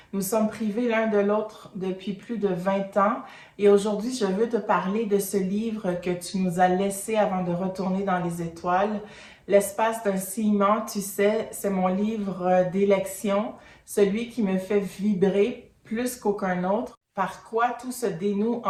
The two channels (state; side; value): identical; both; correlation 1.00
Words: Nous sommes privés l'un de l'autre depuis plus de 20 ans. Et aujourd'hui, je veux te parler de ce livre que tu nous as laissé avant de retourner dans les étoiles. L'espace d'un ciment, tu sais, c'est mon livre d'élection, celui qui me fait vibrer plus qu'aucun autre, par quoi tout se dénoue